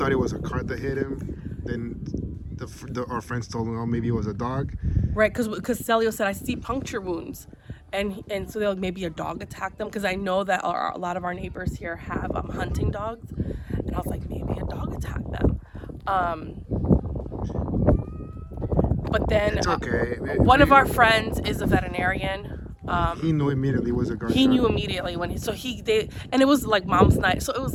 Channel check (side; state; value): both; identical; correlation 1.00